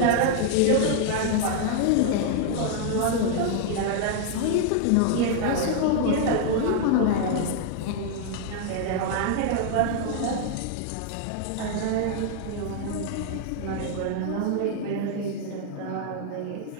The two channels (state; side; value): different; both; correlation 0.00